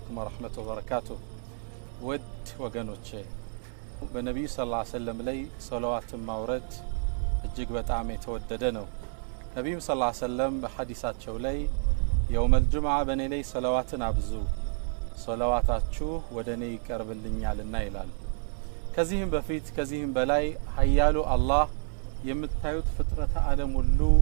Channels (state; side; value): silent; left; 58 dB below the other